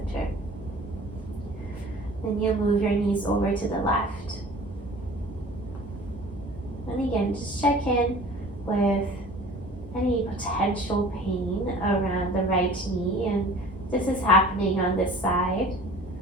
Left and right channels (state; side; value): normal; both; correlation 0.45